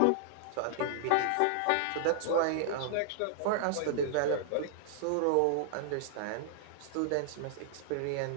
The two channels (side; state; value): both; different; correlation -0.01